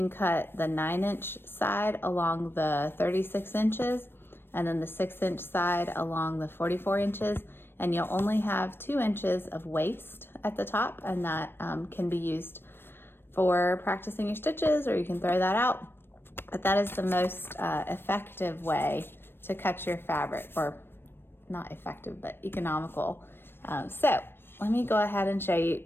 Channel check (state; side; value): late; right; 0.10 ms